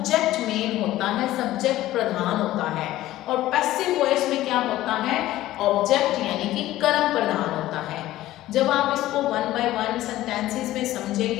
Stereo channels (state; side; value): quieter; right; 15.2 dB